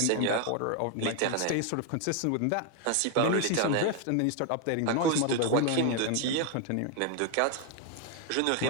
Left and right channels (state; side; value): different; both; correlation 0.01